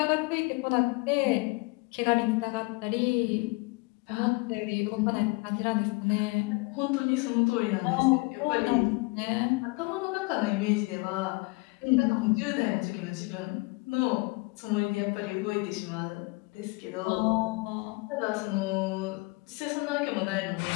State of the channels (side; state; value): right; quieter; 26.8 dB